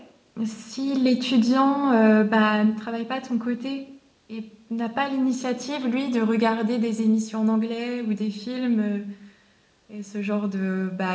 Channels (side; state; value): both; identical; correlation 1.00